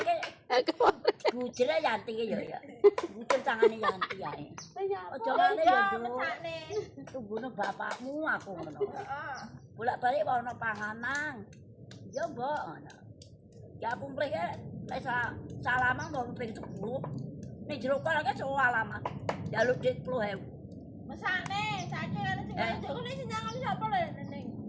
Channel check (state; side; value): identical; both; correlation 1.00